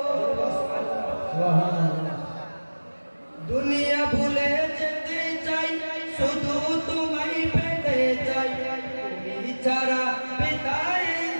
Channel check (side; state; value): both; inverted; correlation -1.00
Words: সুবহানাল্লাহ দুনিয়া ভুলে যেতে চাই শুধু তোমায় পেতে চাই তুমি ছাড়া বেতাই